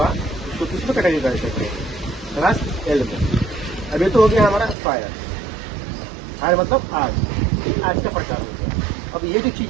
उसको किसमें कैटेगरी कर सकते हैं, क्लास एल में। अब ये तो हो गया हमारा फायर मतलब आग, आज का प्रकार होगा। अब ये जो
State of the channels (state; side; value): drops out; left; at 4.8 s